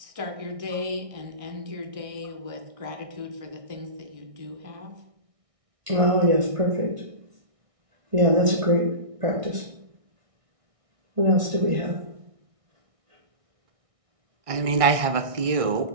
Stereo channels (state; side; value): late; left; 1.6 ms